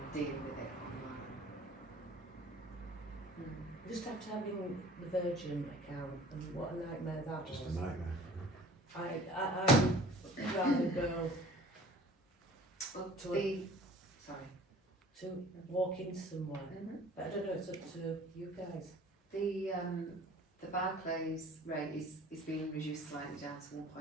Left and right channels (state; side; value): normal; both; correlation 0.48